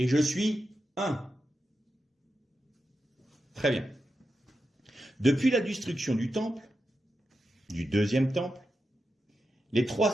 je suis un. Très bien. Depuis la destruction du temple, du deuxième temple, les 3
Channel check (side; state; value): both; normal; correlation 0.89